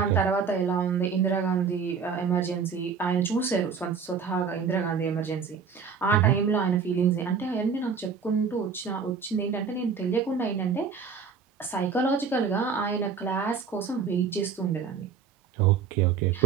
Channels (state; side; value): quieter; left; 6.0 dB